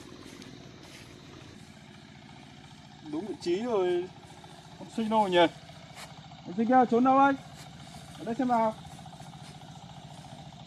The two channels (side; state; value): both; identical; correlation 1.00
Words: Đúng vị trí rồi, con sinh đâu rồi nhỉ? Con sinh kia trốn đâu ấy? Ở đây xem nào.